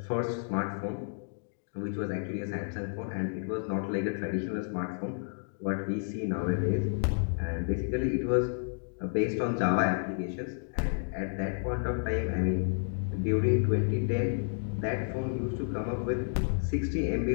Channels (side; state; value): right; silent; digital silence